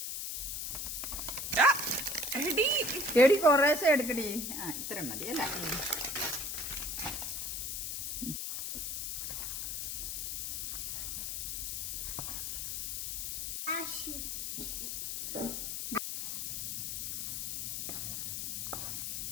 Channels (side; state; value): left; noise; hiss, 3 dB below the sound